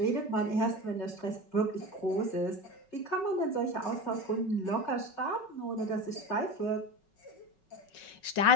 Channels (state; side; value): late; right; 5.4 ms